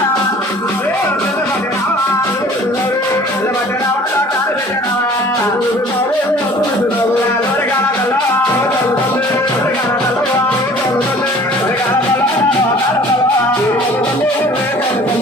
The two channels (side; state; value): both; normal; correlation 0.50